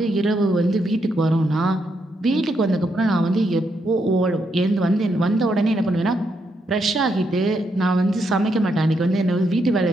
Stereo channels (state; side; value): normal; both; correlation 0.79